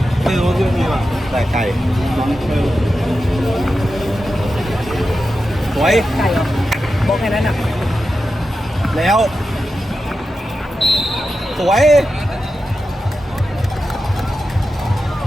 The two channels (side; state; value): both; normal; correlation 0.91